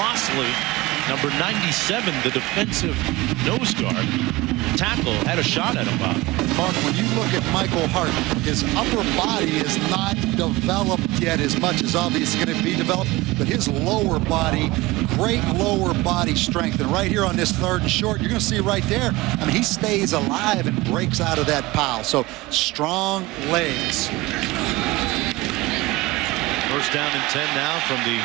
Lossley, number 97, the defensive nose guard, tackle, had a shot at him, Bob. Mark, when you look at Michael Hart, his upper body is not developed yet as much as obviously going to be developed, but his lower body, great lower body strength. And right here on this 3rd and short, you're going to see right there, I mean, he stays alive and breaks out of that pile. So strong legs. 1st down and 10 now from the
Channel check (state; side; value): quieter; left; 20.4 dB